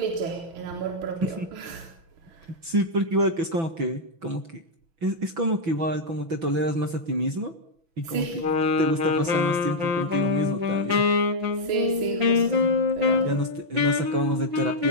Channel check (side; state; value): left; late; 6.0 ms